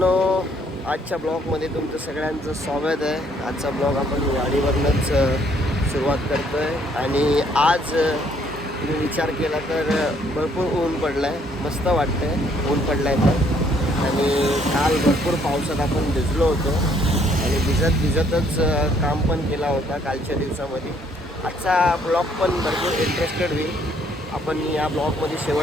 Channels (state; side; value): normal; both; correlation 0.66